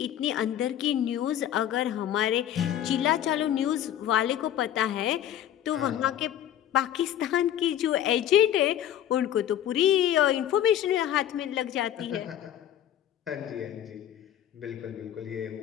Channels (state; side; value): quieter; right; 11.2 dB